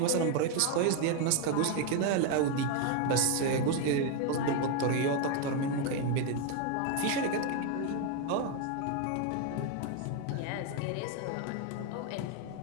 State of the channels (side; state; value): both; different; correlation 0.01